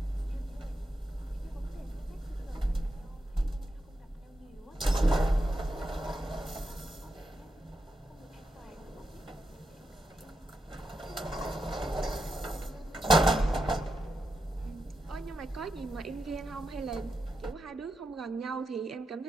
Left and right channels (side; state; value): both; normal; correlation 0.87